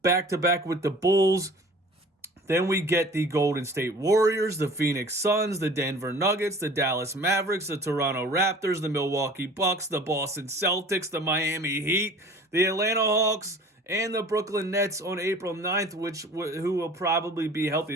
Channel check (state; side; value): normal; both; correlation 0.45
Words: back-to-back with the Bulls. Then we get the Golden State Warriors, the Phoenix Suns, the Denver Nuggets, the Dallas Mavericks, the Toronto Raptors, the Milwaukee Bucks, the Boston Celtics, the Miami Heat, the Atlanta Hawks, and the Brooklyn Nets on April 9th, who will probably be